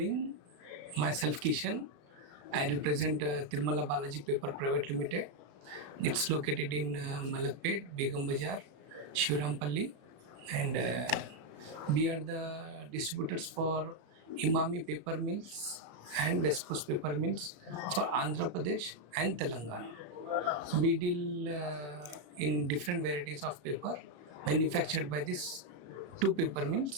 Myself Kishan. I represent Tirumala Balaji Paper Pvt Ltd. It's located in Malakpet, Begum Bazaar, Shivrampalli, and we are the distributors for Imami paper mills and West Coast paper mills for Andhra Pradesh and Telangana. We deal in different varieties of paper manufactured by these two paper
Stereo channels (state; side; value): late; left; 34 ms